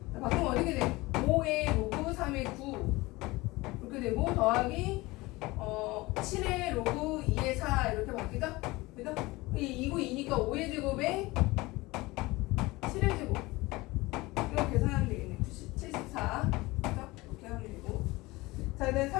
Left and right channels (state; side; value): quieter; right; 21.3 dB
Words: 자, 바꾸면 어떻게 돼? 5의 로그 3의 9 이렇게 되고 더하기 7의 로그 2의 4 이렇게 바뀌죠? 그죠? 2고 2니까 5의 제곱에 7의 제곱 이거 계산하면 되겠네. 74 그죠? 이렇게 하면 되고. 자, 그다음